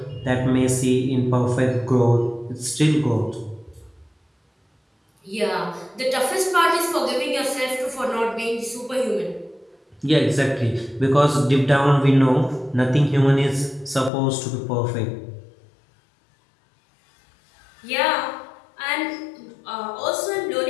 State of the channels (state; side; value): drops out; right; at 14.1 s